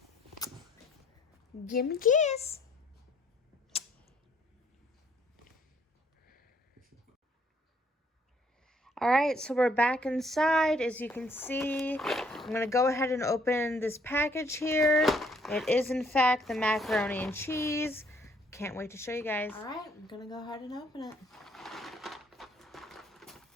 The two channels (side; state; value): both; normal; correlation 0.65